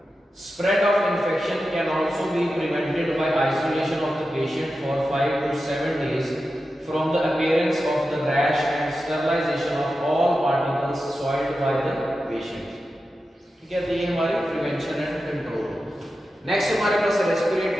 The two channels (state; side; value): normal; both; correlation 0.91